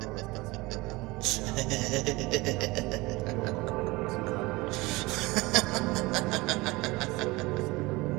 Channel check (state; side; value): quieter; left; 22.4 dB